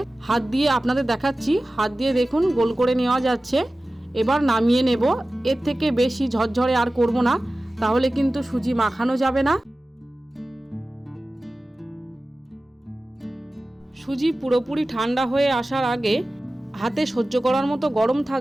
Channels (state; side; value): normal; both; correlation 0.96